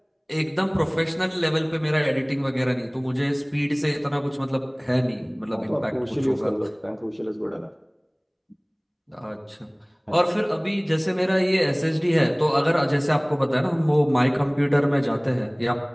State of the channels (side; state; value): both; identical; correlation 1.00